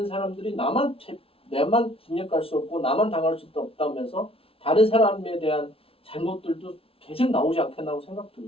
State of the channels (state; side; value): late; right; 0.27 ms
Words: 사람들이 내만 징역 갈 수 없고 나만 당할 수도 없다면서 다른 사람에 대한 잘못들도 계속 나오지 않겠나고